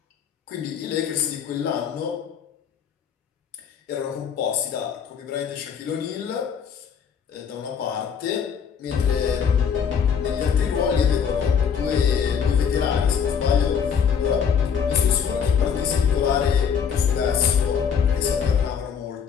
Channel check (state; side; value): quieter; right; 7.2 dB